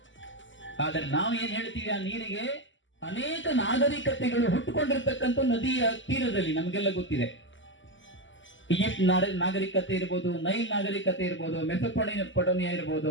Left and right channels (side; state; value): right; late; 0.55 ms